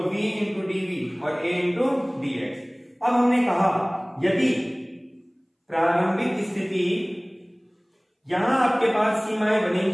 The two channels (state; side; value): identical; both; correlation 1.00